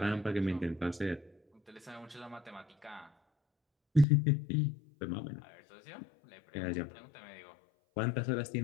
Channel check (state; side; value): drops out; right; at 4.0 s